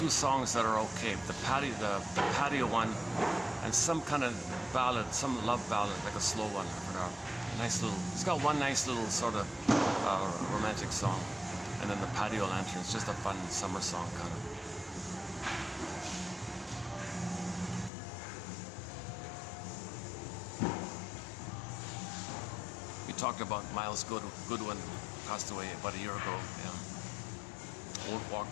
songs that are okay. The patio one, and some kind of ballad, some love ballad, like a slow one. I forgot. Nice little. He's got one nice little sort of romantic song, and then the patio lantern. It's just a fun summer song kind of. We talked about Miles Goodwin, passed away about a year ago. Yeah. Won't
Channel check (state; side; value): drops out; right; at 17.9 s